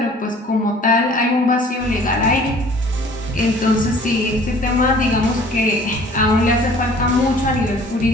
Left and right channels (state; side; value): normal; both; correlation 0.51